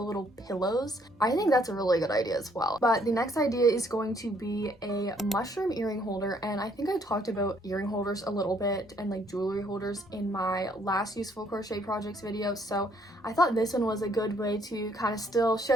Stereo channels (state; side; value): normal; both; correlation 0.66